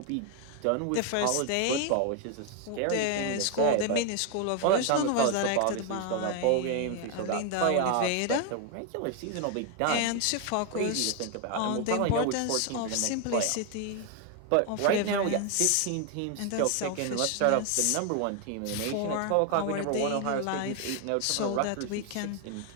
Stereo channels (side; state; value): both; different; correlation 0.01